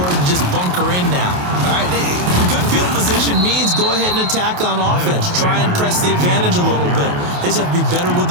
to just bunker in now. All right, good field position means go ahead and attack on offense. Try and press the advantage a little bit. They just have to be better with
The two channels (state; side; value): late; left; 28 ms